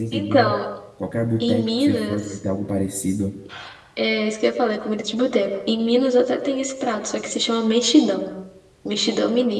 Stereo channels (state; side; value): identical; both; correlation 1.00